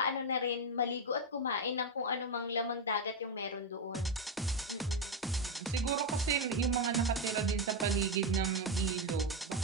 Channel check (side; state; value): both; normal; correlation 0.07